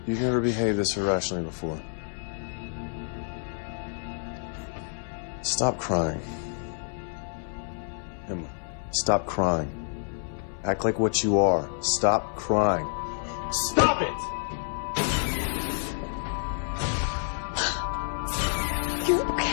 You've never behaved this irrationally before. Stop crying. Emma, stop crying. Act like what you are. Stop crying. Stop it! You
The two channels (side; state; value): right; silent; 59 dB below the other